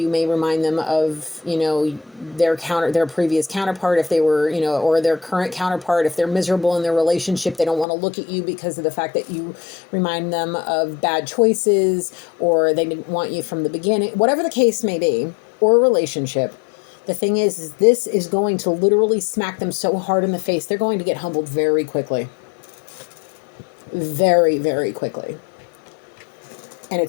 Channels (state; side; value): drops out; right; at 7.9 s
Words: may remind them of, you know, their previous counterpart, if they were, you know, or their current counterpart. If they're miserable in their relationship, they don't want to look at you because of the fact that you remind them of bad choices, or they didn't want you from the beginning, whatever the case may be, or a relationship. The thing is this is going to literally smack them so hard in the face, they're going to get humbled very quickly. Very, very quickly. And